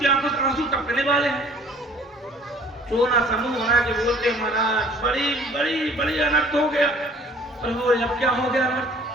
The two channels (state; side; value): normal; both; correlation 0.53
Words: आंखों से आंसू टपकने वाले हैं। रोना समूह बना के बोलते महाराज बड़ी बड़ी बड़ी अनर्थ हो गया। प्रभु अब क्या हो गया अनर्थ?